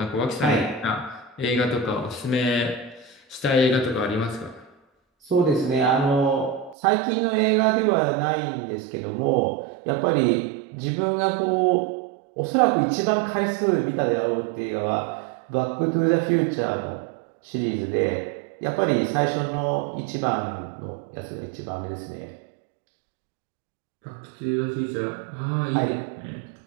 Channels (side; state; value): left; drops out; at 6.8 s